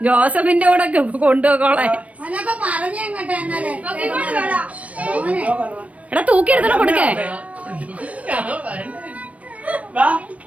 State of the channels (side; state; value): left; late; 0.066 ms